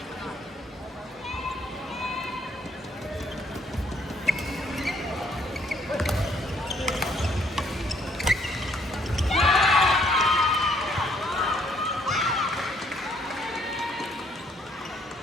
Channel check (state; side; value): normal; both; correlation 0.66